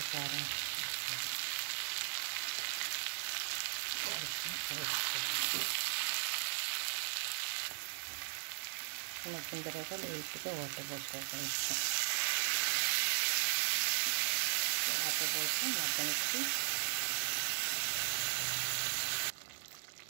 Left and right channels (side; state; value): left; silent; digital silence